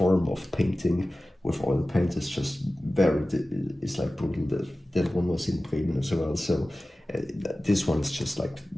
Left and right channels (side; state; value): both; normal; correlation 0.96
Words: of painting with oil paint is just it's like brutal. That one was in Bremen as well, so this one is just like